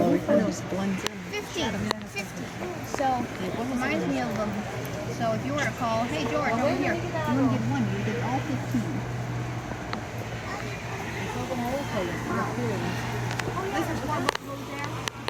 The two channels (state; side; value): identical; both; correlation 1.00